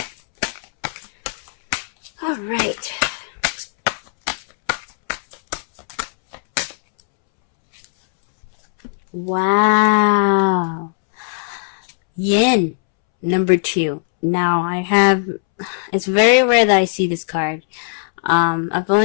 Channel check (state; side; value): silent; right; 67 dB below the other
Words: All right. Wow. Yin, number 2. Now, it's very rare that I see this card. I've